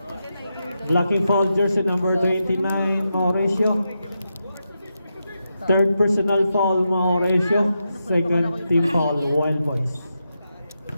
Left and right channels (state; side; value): inverted; both; correlation -0.87